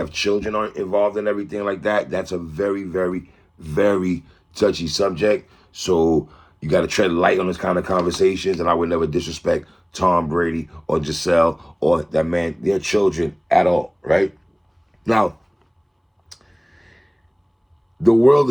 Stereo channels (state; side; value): identical; both; correlation 1.00